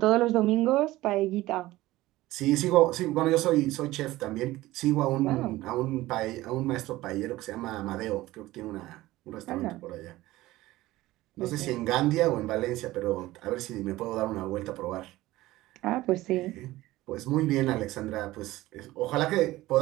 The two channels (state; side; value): quieter; left; 17.4 dB